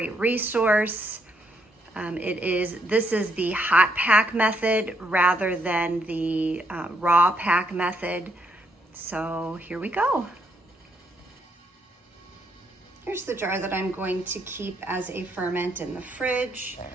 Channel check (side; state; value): both; normal; correlation 0.74